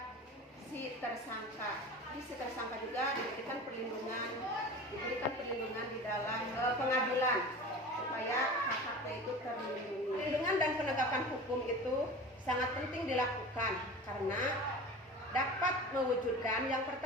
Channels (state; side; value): normal; both; correlation 0.35